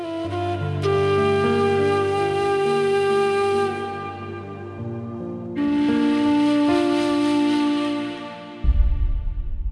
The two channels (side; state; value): both; identical; correlation 1.00